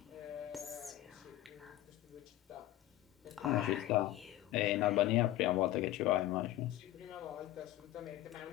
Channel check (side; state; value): right; quieter; 14.8 dB